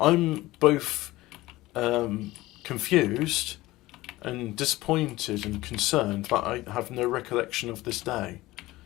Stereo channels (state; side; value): quieter; right; 18.4 dB